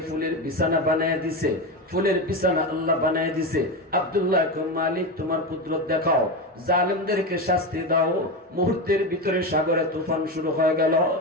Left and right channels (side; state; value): both; normal; correlation 0.17